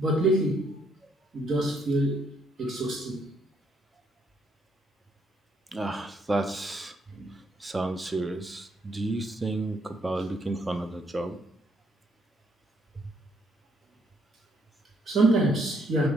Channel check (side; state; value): both; normal; correlation 0.71